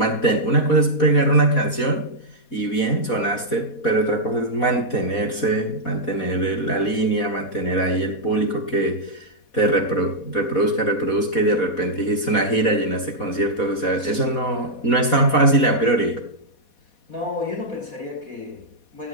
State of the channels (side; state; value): right; late; 4.2 ms